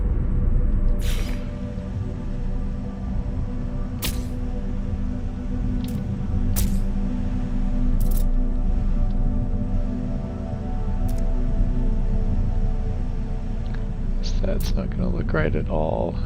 That's not going to look right at all.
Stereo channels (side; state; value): both; identical; correlation 1.00